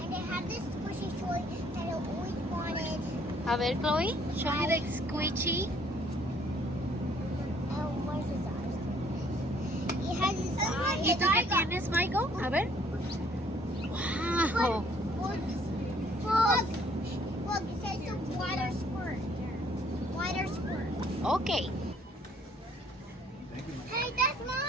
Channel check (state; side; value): normal; both; correlation 0.62